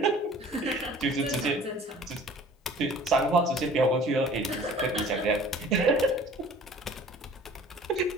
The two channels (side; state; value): both; normal; correlation 0.48